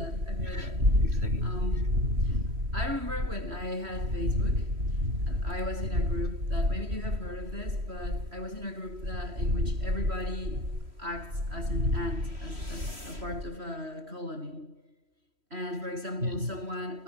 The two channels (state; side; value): late; left; 3.1 ms